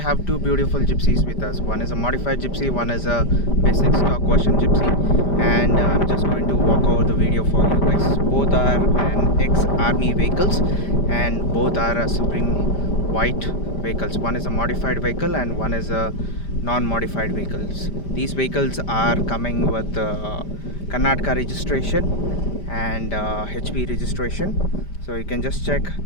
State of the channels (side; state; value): right; late; 5.0 ms